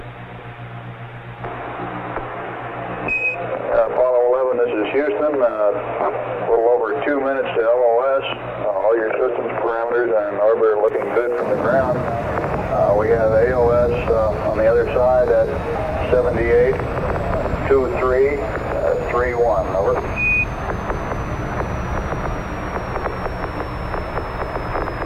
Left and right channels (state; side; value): identical; both; correlation 1.00